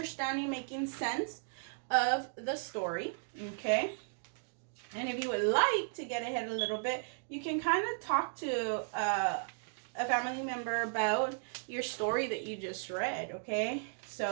making sense of the story, okay? And if you would like to get ahead a little bit, you can kind of talk to a family member about your story that you just read, okay?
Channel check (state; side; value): silent; left; digital silence